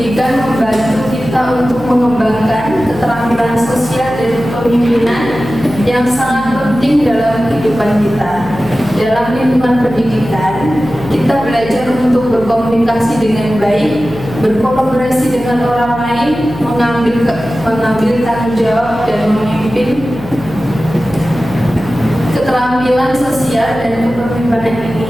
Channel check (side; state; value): left; noise; hum, 14 dB below the sound